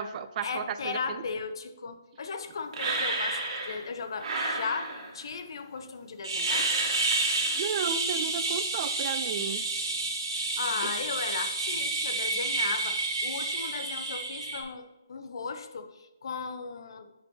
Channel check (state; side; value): inverted; both; correlation -0.31